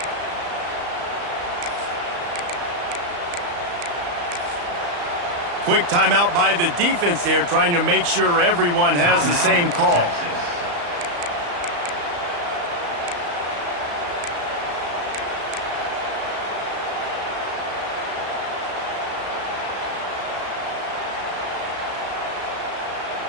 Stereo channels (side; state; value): left; late; 35 ms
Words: Quick timeout by the defense there, trying to make sure everyone has the same call.